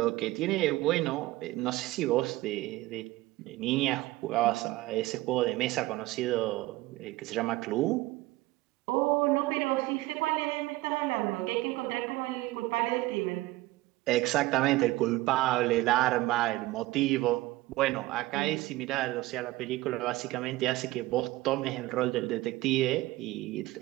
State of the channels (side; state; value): left; quieter; 18.6 dB